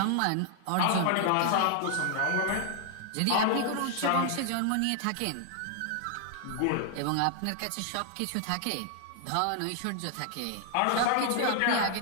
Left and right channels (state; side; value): different; both; correlation 0.00